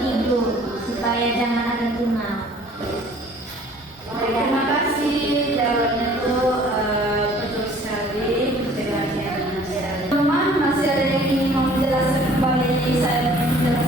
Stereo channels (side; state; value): both; normal; correlation 0.53